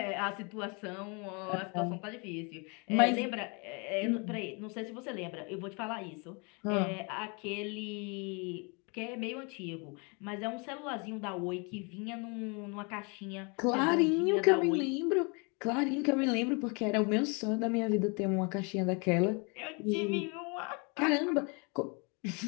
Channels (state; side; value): quieter; right; 32.4 dB